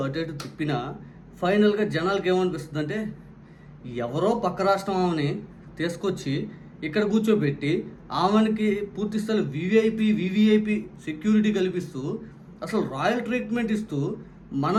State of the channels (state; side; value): identical; both; correlation 1.00